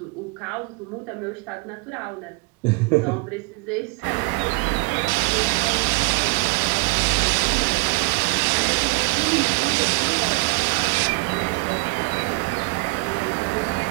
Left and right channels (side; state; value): left; quieter; 26.4 dB